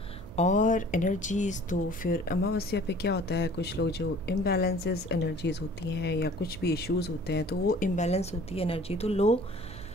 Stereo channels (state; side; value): noise; right; hum, 15 dB below the sound